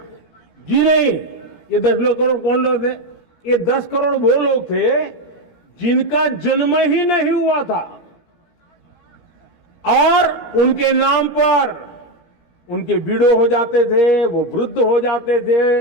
जी नहीं, ये 10 करोड़ कौन लोग थे? ये 10 करोड़ वो लोग थे जिनका जन्म ही नहीं हुआ था और उनके नाम पर उनके विडो हो जाते थे, वो वृद्ध हो जाते थे,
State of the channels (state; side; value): late; right; 13 ms